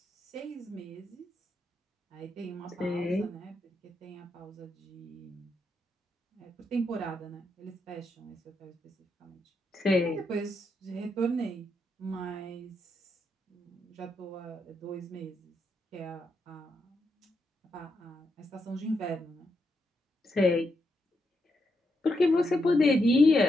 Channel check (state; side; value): normal; both; correlation 0.82